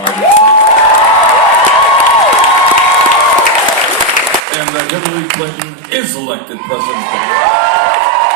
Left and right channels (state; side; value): drops out; left; at 4.4 s